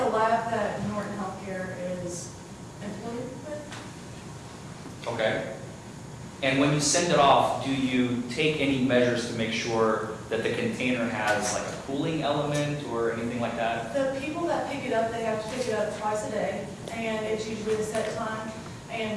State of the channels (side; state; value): both; identical; correlation 1.00